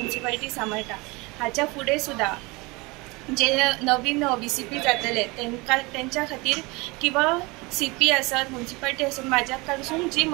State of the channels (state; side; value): quieter; left; 25.0 dB